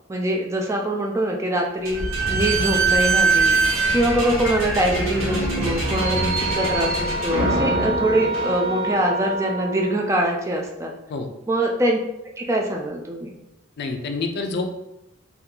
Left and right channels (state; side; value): normal; both; correlation 0.45